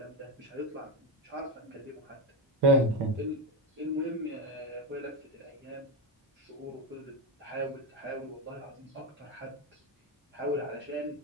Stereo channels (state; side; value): normal; both; correlation 0.12